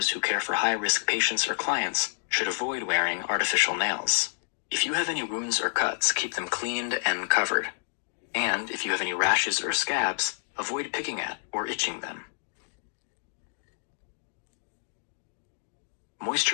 who care for high-risk patients or clients should avoid wearing artificial nails. If you have any wounds or cuts, keep them cleaned and covered. And if you have any rashes or scabs, avoid picking at or itching them.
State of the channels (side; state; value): right; silent; digital silence